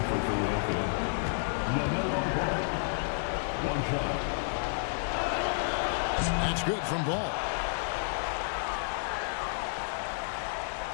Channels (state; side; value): silent; right; digital silence